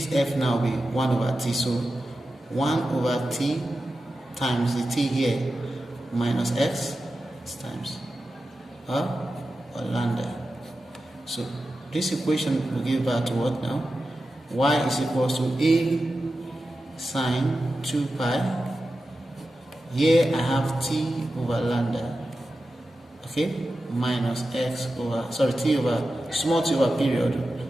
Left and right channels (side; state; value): both; normal; correlation 0.92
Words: f now will be 1 over t, so 1 over t times the t here minus x times or lambda. So this equation will give back to what now? Y is equals to a sine 2 pi. Here I have t over lambda, okay, minus x over, sorry, t over, small t over period,